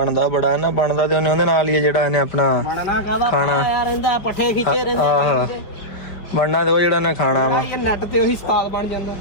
ਬੜਾ ਨਾ ਬਣਦਾ ਤੇ ਉਹਦੇ ਨਾਲ ਹੀ ਜਿਹੜਾ ਇਹਨੇ ਆਪਣਾ ਖਾਣਾ ਰਹਿੰਦਾ ਪੱਠੇ ਖਿੱਚੇ ਰਹਿੰਦੇ ਆਹ ਬਣਨਾ ਤੇ ਉਹ ਜਿਹੜਾ ਨੇ ਖਾਣਾ ਵਾ ਇਹ ਨੈਟ ਤੇ ਉਹੀ ਸਵਾਦ ਬਣ ਜਾਂਦਾ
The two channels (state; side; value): late; right; 5.2 ms